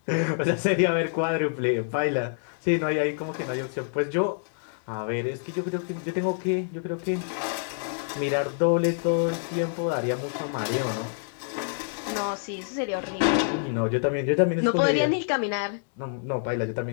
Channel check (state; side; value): silent; right; digital silence